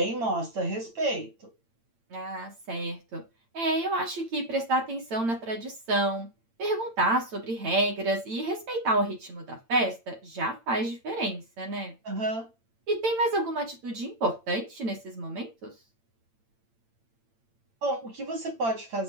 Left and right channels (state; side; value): late; left; 8.8 ms